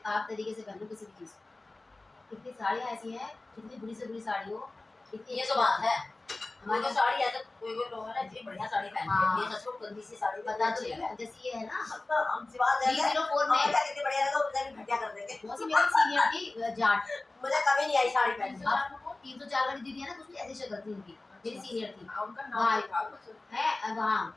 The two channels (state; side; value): quieter; right; 3.1 dB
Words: आप तरीके से पहनो किसी भी चीज को कितनी साड़ियाँ ऐसी हैं कितनी बुरी से बुरी साड़ी हो कितनी ये तो बात है हमारे हमारी साड़ी है तो कोई कोई लोग है ना इतनी बढ़िया साड़ी पहनते हैं ये सच में गंदी सी साड़ी बता अच्छी दो है जैसे ये है ना तो हम सिवा देंगे 304 में कितनी बढ़िया लगा उधर भी घटिया कर देंगे वो सी मेरी सीनियर थी जाट मुझे कभी नहीं आई साड़ी पहनने अब 304 वाली दीदी है ना कुछ ऐसी शक्ल थी उनकी मेरी सीनियर थी उनका नाम था कुछ है वहाँ